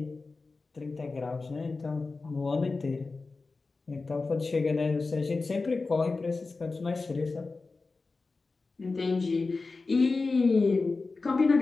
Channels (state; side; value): quieter; right; 3.9 dB